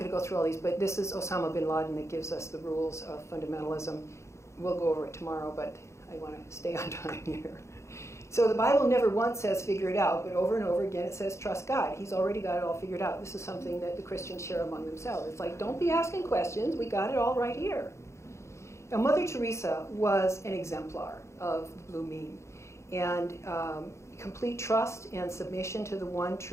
to go through all these, but this is Osama bin Laden that gives us the rules of fundamentalism. We'll go over it tomorrow, but I want to stay on time here. So the Bible never once says figure it out, but over and over again it says trust God. He's already got it all figured out. This is something that the Christians share among themselves. It's like, don't be asking questions. We got it all right here. Now, Mother Teresa was an exemplar of the Blue Mean. And complete trust and submission to the one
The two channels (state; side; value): late; right; 0.14 ms